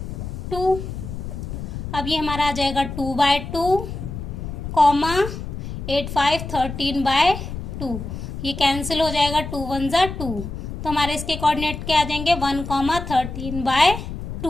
अब ये हमारा आ जाएगा 2/2, 8 5 13/2, ये कैंसिल हो जाएगा, 2 1 = 2, तो हमारे इसके कोऑर्डिनेट क्या आ जाएंगे 1,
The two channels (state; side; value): noise; left; rumble, 7 dB below the sound